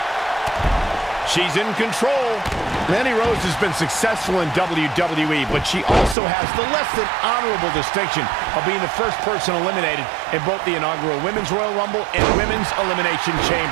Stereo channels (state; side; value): drops out; left; at 6.2 s